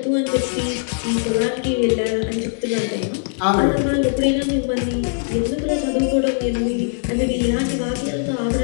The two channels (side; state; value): right; silent; 65 dB below the other